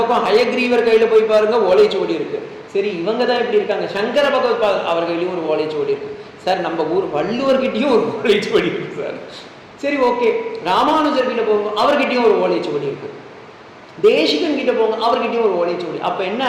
ஹயக்ரீவர் கையில் போய் பாருங்க, ஓலைச்சுவடி இருக்கு. சரி, இவங்க தான் இப்படி இருக்காங்க. சங்கர பகவத்பாதர் அவர் கையிலையும் ஒரு ஓலைச்சுவடி இருக்கு சார். நம்ம ஊர் வள்ளுவர்கிட்டையும் ஒரு ஓலைச்சுவடி இருக்கு சார். சரி, ஓகே. ராமானுஜர் கிட்ட போங்க, அவர்கிட்டயும் ஒரு ஓலைச்சுவடி இருக்கு. தேசிகன் கிட்ட போங்க, அவர்கிட்டயும் ஒரு ஓலைச்சுவடி. அப்ப என்ன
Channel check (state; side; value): identical; both; correlation 1.00